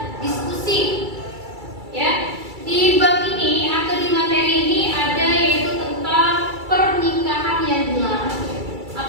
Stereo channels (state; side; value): late; left; 2.3 ms